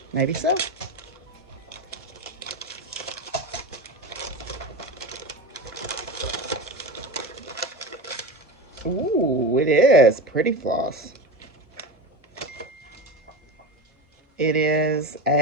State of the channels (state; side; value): normal; both; correlation 0.25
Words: Maybe so. Ooh, it is pretty floss. It is